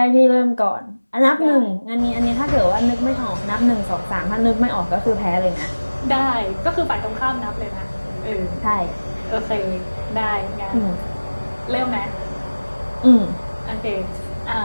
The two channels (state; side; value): inverted; both; correlation -1.00